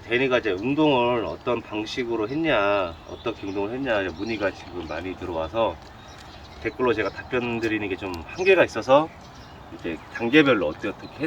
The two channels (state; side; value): identical; both; correlation 1.00